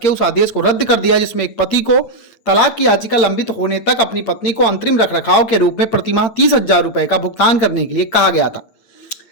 के उस आदेश को रद्द कर दिया जिसमें एक पति को तलाक की याचिका लंबित होने तक अपनी पत्नी को अंतरिम रखरखाव के रूप में प्रतिमाह 30,000 रुपए का भुगतान करने के लिए कहा गया था।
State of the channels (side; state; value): right; late; 8.8 ms